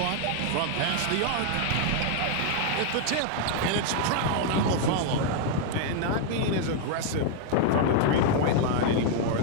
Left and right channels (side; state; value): both; different; correlation 0.00